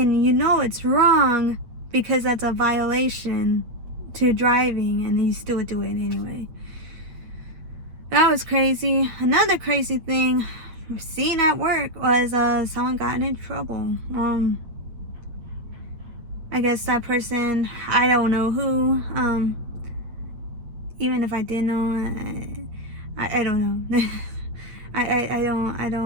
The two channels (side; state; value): left; late; 8.7 ms